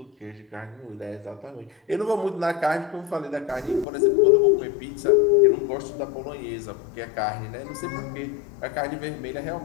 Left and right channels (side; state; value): right; drops out; at 3.9 s